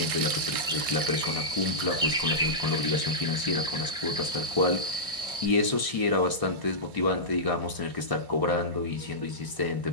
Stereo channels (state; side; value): late; left; 1.6 ms